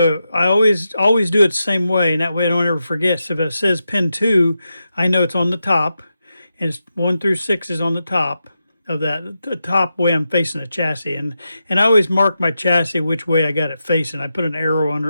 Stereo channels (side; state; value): both; inverted; correlation -0.88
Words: I always do it the same way, and that way I don't ever forget. So if it says pin 2, I know it's on the top, and it's 1 through 6 is on the top of that, the top way I'm facing the chassis. And I always mark my chassis which way I got it facing. I put an arrow